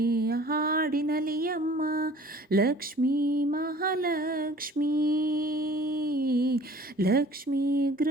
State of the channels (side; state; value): both; normal; correlation 0.49